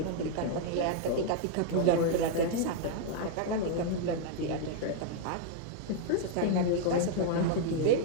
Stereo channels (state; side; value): different; both; correlation 0.00